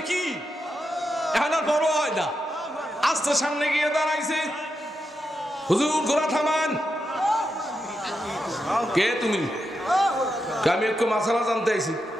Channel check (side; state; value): both; normal; correlation 0.86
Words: কি এখন আর বড় হয় না, আস্তে সামনে গিয়ে দাঁড়াইছে, হুজুর ঘোড়া থামান। কে তুমি? আমি একটু মাসালা জানতে আইছি।